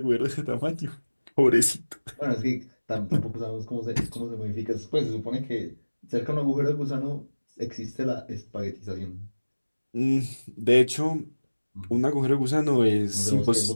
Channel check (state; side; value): inverted; both; correlation -1.00